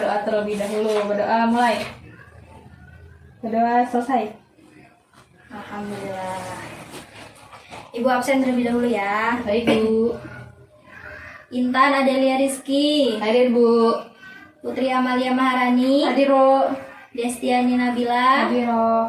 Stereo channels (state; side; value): identical; both; correlation 1.00